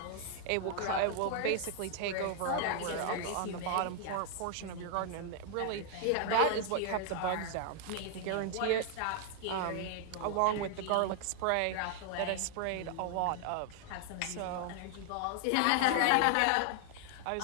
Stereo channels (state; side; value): different; both; correlation 0.00